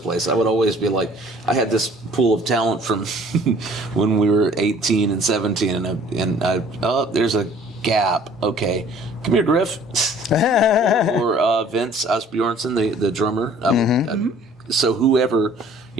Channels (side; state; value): both; normal; correlation 0.53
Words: place. I would always be like, I had this pool of talent from when we were 18 and 17, oh, there's a gap. Okay, come here, Griff. or Vince Asbjornsen, the drummer. So whoever,